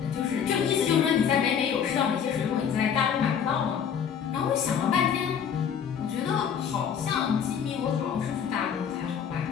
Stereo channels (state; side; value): quieter; right; 7.8 dB